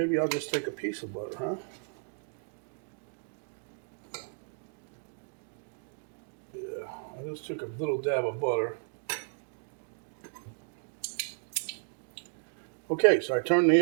I'll just take a piece of butter, huh? Yeah, I just took a little dab of butter. Okay, so I turned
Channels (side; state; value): left; silent; 56 dB below the other